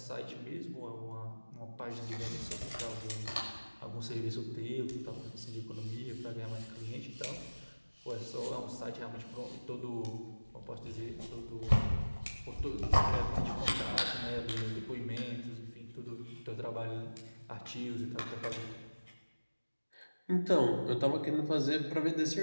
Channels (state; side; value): inverted; both; correlation -1.00